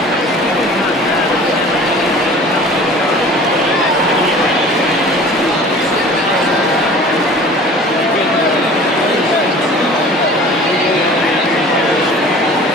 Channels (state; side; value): normal; both; correlation 0.44